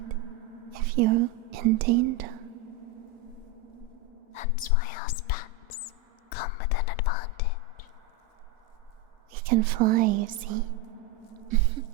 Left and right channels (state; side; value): quieter; left; 4.6 dB